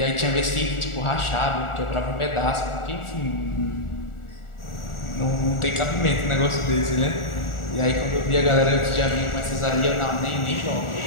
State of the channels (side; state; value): right; late; 1.4 ms